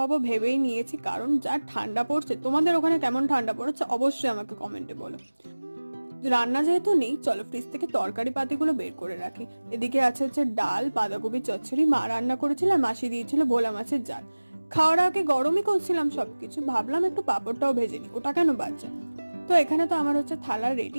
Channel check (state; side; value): inverted; both; correlation -1.00